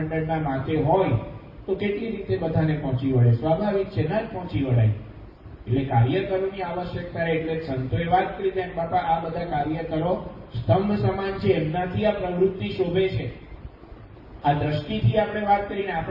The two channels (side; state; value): both; identical; correlation 1.00